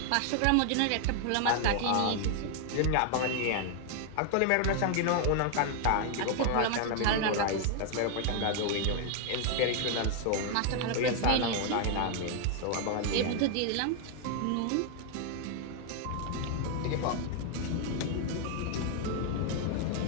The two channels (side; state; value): both; different; correlation 0.00